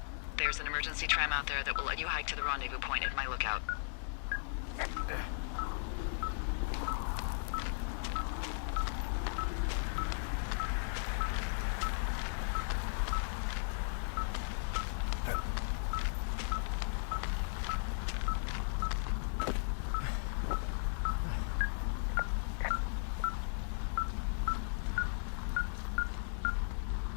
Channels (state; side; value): silent; right; digital silence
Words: There's an emergency tram out there that will let you hike to the rendezvous point at my lookout.